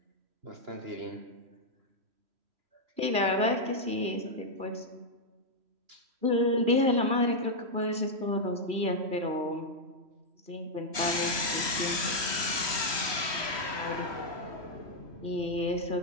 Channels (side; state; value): left; late; 3.1 ms